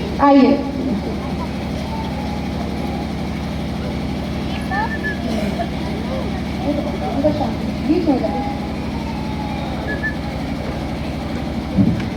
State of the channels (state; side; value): identical; both; correlation 1.00